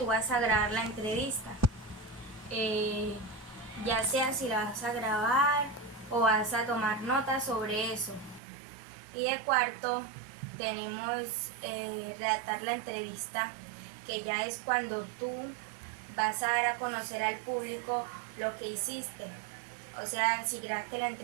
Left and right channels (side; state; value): left; drops out; at 8.4 s